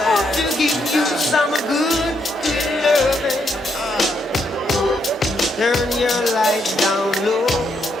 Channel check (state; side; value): normal; both; correlation 0.77